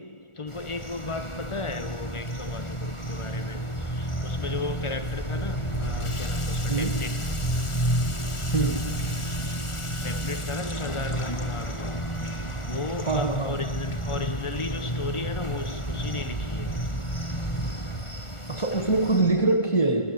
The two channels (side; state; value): right; late; 1.4 ms